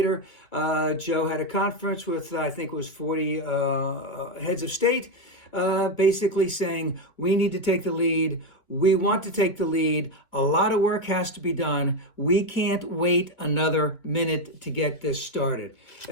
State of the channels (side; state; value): right; late; 2.1 ms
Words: Joe had a conference with, I think it was 40 heads of state, basically saying we need to take the lead. We want to take the lead. A lot of work has to be done. We can't wait another minute to get this started.